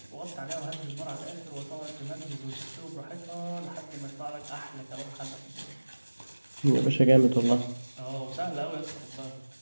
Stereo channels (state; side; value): inverted; both; correlation -1.00